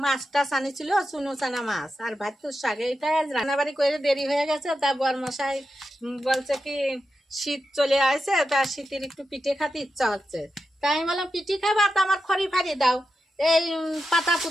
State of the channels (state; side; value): normal; both; correlation 0.89